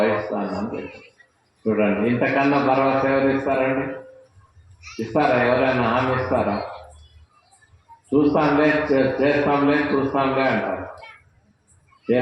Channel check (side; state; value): both; identical; correlation 1.00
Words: అని చెప్పి. చూడండి, ఇంతకన్నా భరోసా ఎవరు ఇస్తారండి? ఇస్తారా? ఎవరైనా హామీ ఇస్తారా? చూస్తాంలే, చేస్తాంలే, చూస్తాంలే అంటారు.